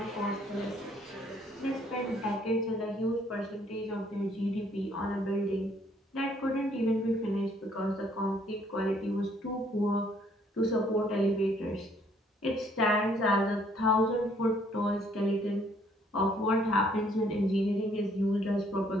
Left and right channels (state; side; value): normal; both; correlation 0.64